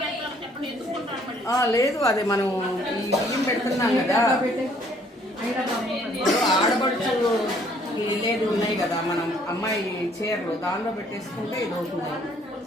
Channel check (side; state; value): both; normal; correlation 0.62